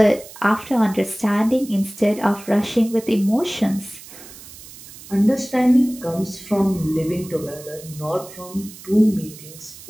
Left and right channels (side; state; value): right; noise; hiss, 17 dB below the sound